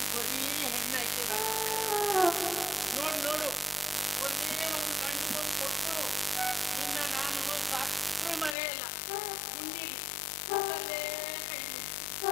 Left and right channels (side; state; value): right; drops out; at 8.6 s